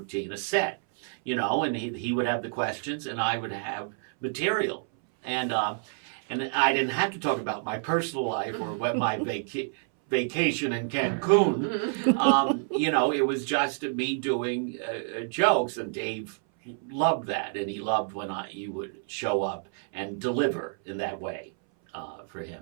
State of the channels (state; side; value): silent; left; 59 dB below the other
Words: a set. And he would have the questions, and I would have material, and I didn't have to talk about my personal life or what my vacation in Cancun. It was just me doing jokes, and Dave loved that, and he loved when you would show up and deliver in that way for